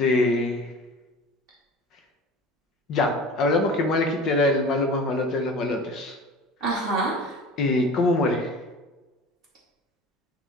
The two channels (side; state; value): both; normal; correlation 0.39